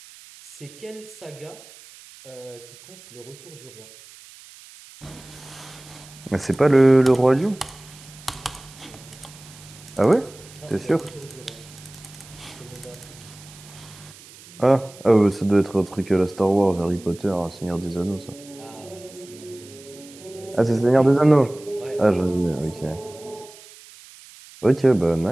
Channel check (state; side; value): noise; right; hiss, 21 dB below the sound